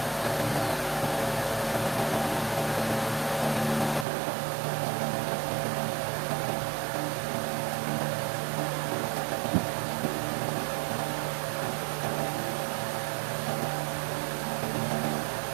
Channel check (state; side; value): drops out; left; at 4.0 s